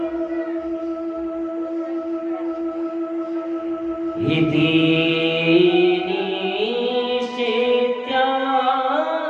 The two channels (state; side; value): identical; both; correlation 1.00